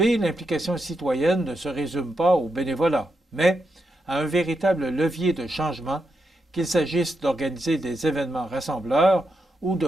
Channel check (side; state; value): both; normal; correlation 0.84